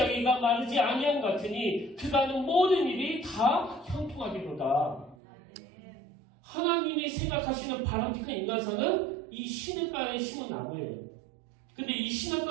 마르지 아니함 같으니 그가 하는 모든 일이 다 형통하기로다. 하나님이 생각하시는 바람직한 인간상은 이 시냇가에 심은 나무예요. 근데 이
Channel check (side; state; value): left; drops out; at 5.2 s